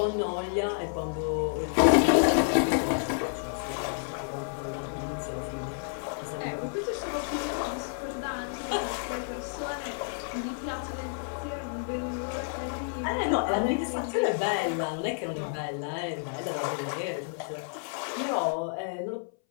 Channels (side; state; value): right; silent; 58 dB below the other